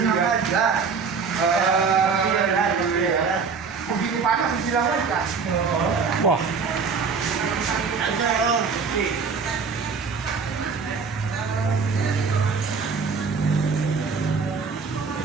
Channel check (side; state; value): left; quieter; 5.3 dB